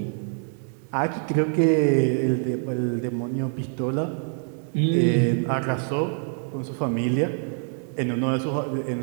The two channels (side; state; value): left; silent; 60 dB below the other